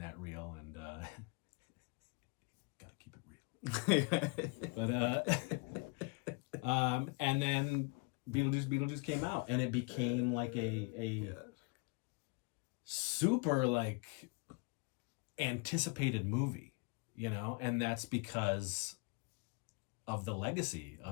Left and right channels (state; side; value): quieter; right; 29.7 dB